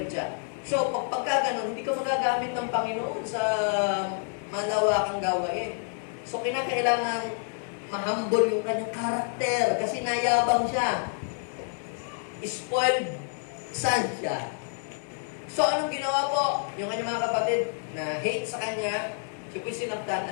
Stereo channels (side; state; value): right; silent; 59 dB below the other